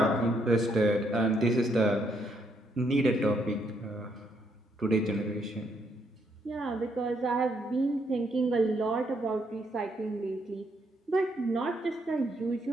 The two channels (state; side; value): normal; both; correlation 0.74